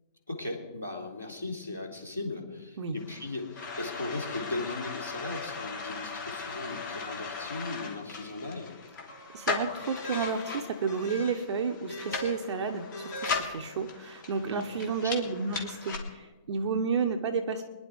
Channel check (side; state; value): both; inverted; correlation -0.41